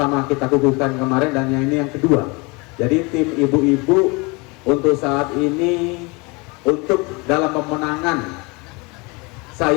kita kukuhkan kemarin, dan yang ini yang kedua. Jadi tim ibu-ibu untuk saat ini, untuk dalam pemenangan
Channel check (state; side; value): quieter; right; 27.4 dB